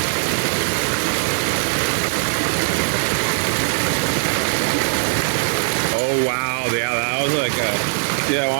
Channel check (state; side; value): silent; left; digital silence